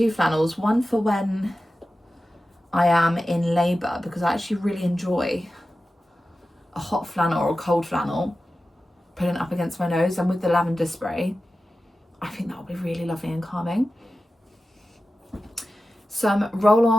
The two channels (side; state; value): both; normal; correlation 0.94